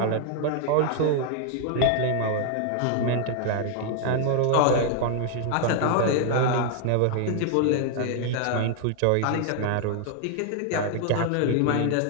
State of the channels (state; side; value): different; both; correlation 0.00